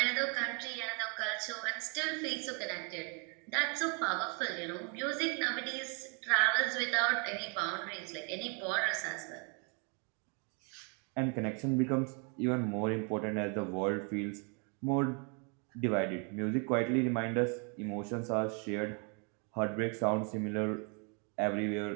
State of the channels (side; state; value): left; quieter; 36.3 dB